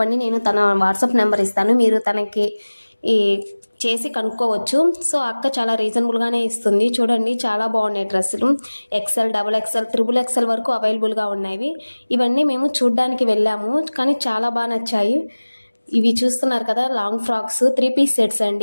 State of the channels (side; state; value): both; inverted; correlation -1.00